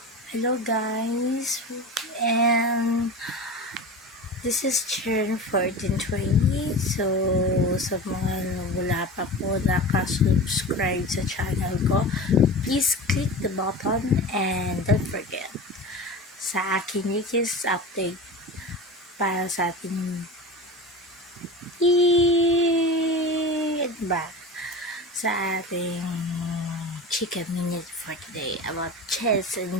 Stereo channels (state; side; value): normal; both; correlation 0.30